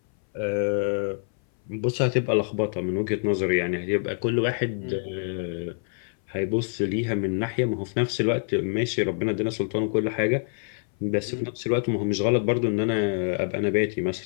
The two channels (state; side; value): silent; right; 59 dB below the other